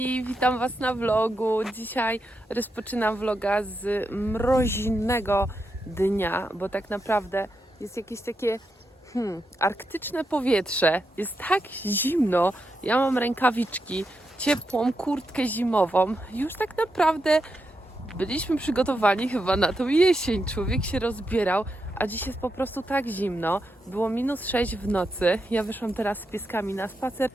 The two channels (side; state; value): both; normal; correlation 0.85